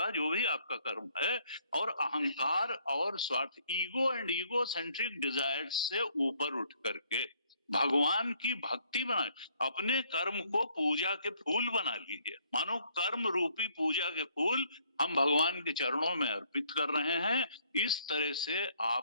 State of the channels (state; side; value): inverted; both; correlation -0.66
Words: जो भी आपका कर्म है, और अहंकार और स्वार्थ, ego and ego centric desires से ऊपर उठ करके भगवान की भक्ति बनाए, अपने कर्म को पूजा के फूल बना लीजिए। मानो कर्म रूपी पूजा के फूल हम भगवान के चरणों में अर्पित कर रहे हैं, इस तरह से